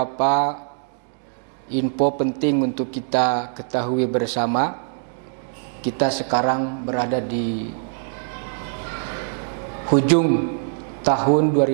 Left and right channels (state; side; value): silent; left; digital silence